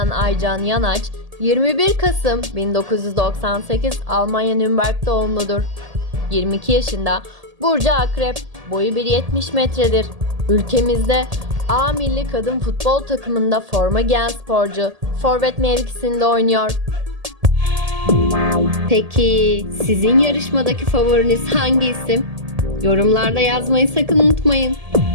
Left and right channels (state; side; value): late; left; 1.8 ms